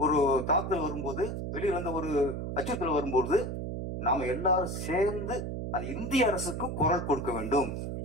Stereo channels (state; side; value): noise; right; hum, 4 dB below the sound